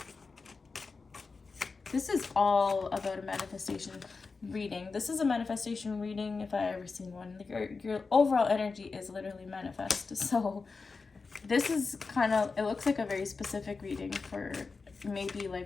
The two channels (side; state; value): right; quieter; 4.4 dB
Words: This is all about a manifestation reading. This is a manifestation reading if I ever seen one. Your overall energy is literally manifest. So this is kind of, it looks like a very specific reading for maybe